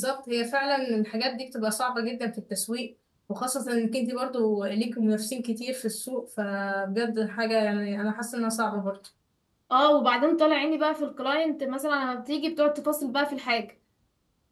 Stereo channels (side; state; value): both; identical; correlation 1.00